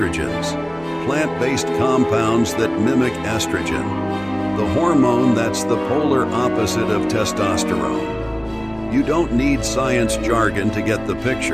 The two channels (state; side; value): noise; right; rumble, 25 dB below the sound